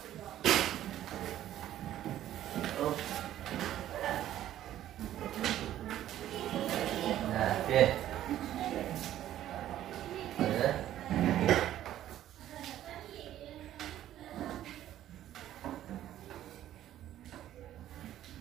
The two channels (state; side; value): quieter; left; 12.5 dB